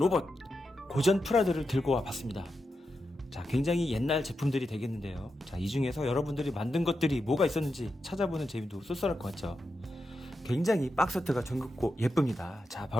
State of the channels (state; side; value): normal; both; correlation 0.88